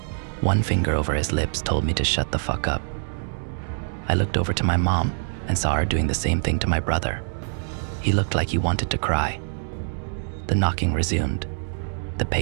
One finger over his lips told me to shut the fuck up. I looked over to my mom and saw her doing the same thing to my brother. He looked like he wanted to cry. The knocking resumed. The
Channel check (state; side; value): silent; left; digital silence